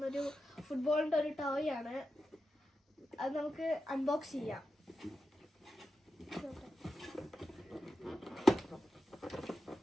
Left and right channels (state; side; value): normal; both; correlation 0.90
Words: ഒരു ഫുട്ബോളിന്റെ ഒരു ടോയ് ആണ്. അത് നമുക്ക് അൺബോക്സ് ചെയ്യാം.